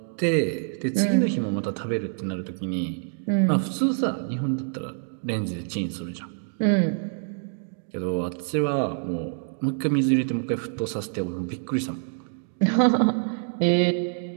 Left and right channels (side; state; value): left; silent; 61 dB below the other